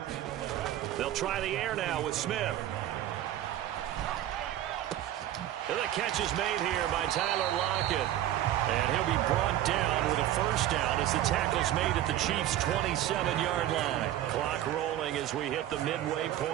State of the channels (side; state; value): left; quieter; 12.7 dB